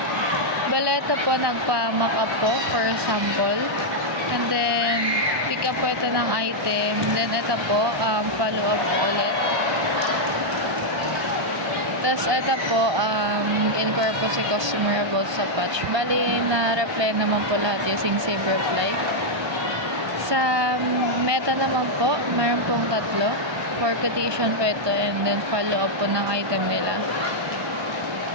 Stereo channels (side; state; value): left; late; 1.2 ms